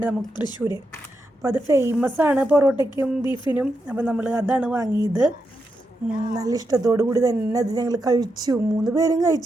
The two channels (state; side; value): normal; both; correlation 0.85